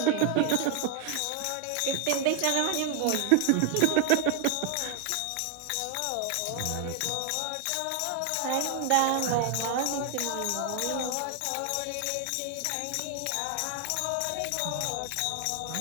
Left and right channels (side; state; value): both; different; correlation 0.00